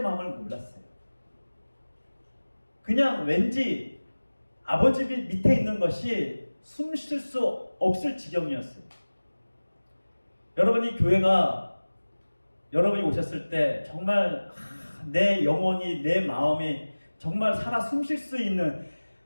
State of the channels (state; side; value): inverted; both; correlation -1.00